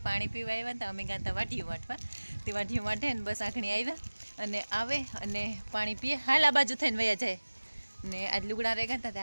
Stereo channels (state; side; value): inverted; both; correlation -1.00